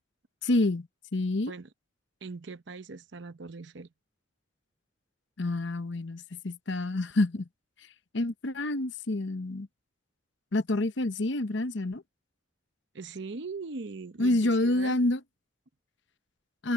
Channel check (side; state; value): both; normal; correlation 0.59